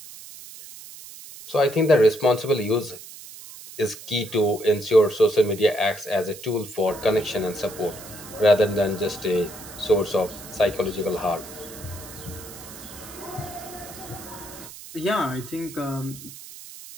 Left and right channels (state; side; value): noise; right; hiss, 15 dB below the sound